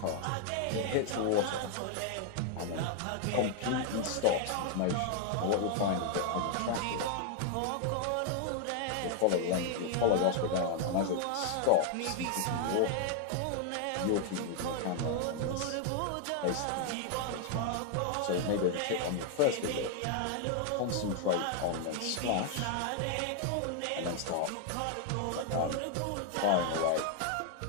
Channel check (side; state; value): both; different; correlation 0.00